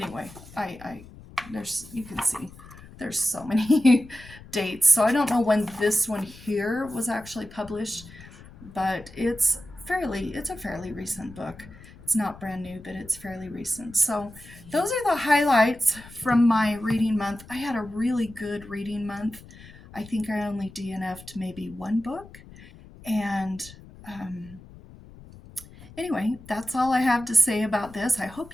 there's, you can see, there's so many dates. So I don't know when this one here was actually published, but it's a fairly recent book. It's not brand new, but it's fairly recent. So those are the highlights from my reading month. I had a really good reading month. I think I only DNF'd maybe 1 book. And anyway, that's all I have to say about this. I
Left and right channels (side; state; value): left; noise; rumble, 19 dB below the sound